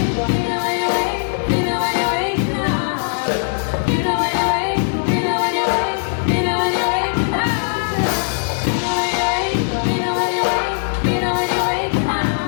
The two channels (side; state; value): right; silent; digital silence